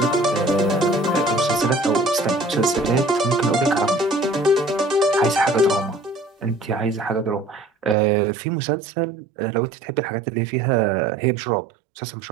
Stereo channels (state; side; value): drops out; left; at 8.0 s